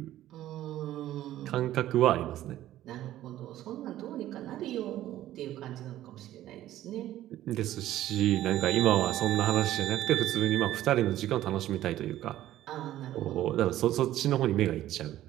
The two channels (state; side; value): quieter; left; 13.7 dB